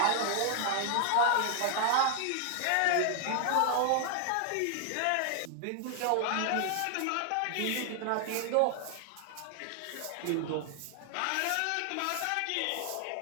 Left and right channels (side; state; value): both; different; correlation 0.00